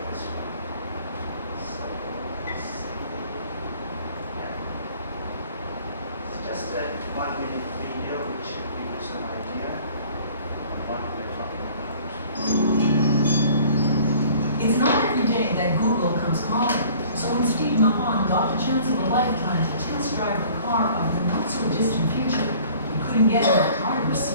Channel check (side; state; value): both; inverted; correlation -0.51